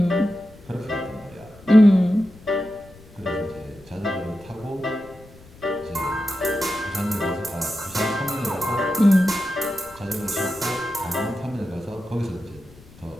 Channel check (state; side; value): noise; left; rumble, 23 dB below the sound